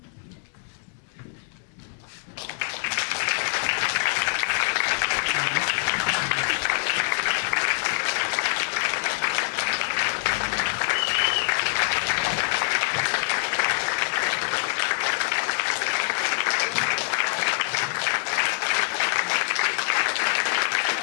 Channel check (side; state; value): right; silent; digital silence